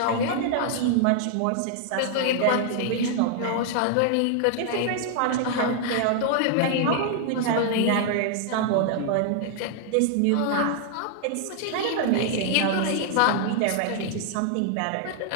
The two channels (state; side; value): different; both; correlation 0.00